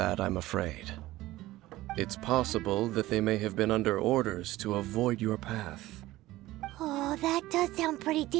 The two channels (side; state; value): left; quieter; 17.0 dB